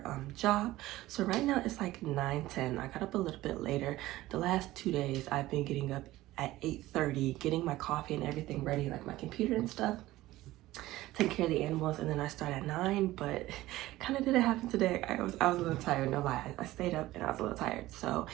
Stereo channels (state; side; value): quieter; left; 16.8 dB